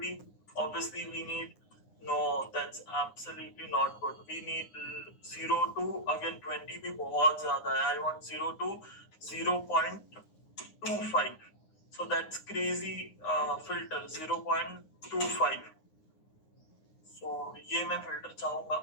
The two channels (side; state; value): right; late; 9.8 ms